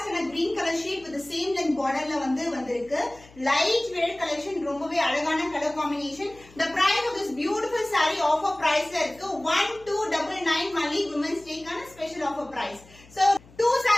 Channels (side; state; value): left; noise; hum, 24 dB below the sound